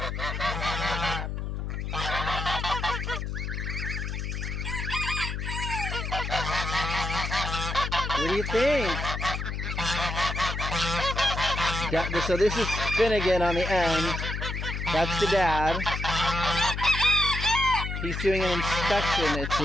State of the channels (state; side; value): noise; left; hum, 4 dB below the sound